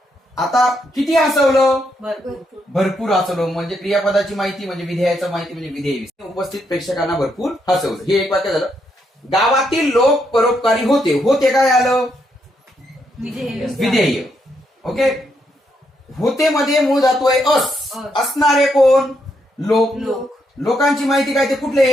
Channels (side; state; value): both; normal; correlation 0.78